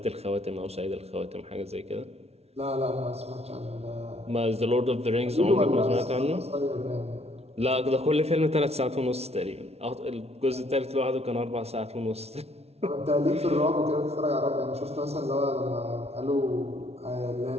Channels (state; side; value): late; left; 0.31 ms